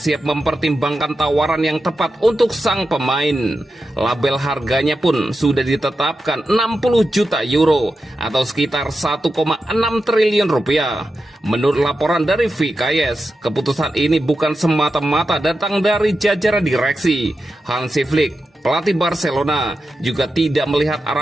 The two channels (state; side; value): normal; both; correlation 0.90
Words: mempertimbangkan tawaran yang tepat untuk sang pemain. Label harganya pun sudah ditetapkan 60 juta euro atau sekitar 1,6 triliun rupiah. Menurut laporan dari VKS, keputusan ini bukan semata-mata datang dari jajaran direksi. Hansi Flick, pelatih Barcelona, juga tidak melihat